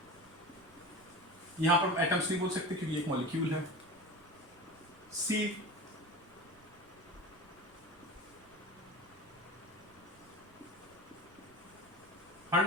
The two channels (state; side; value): noise; right; rumble, 27 dB below the sound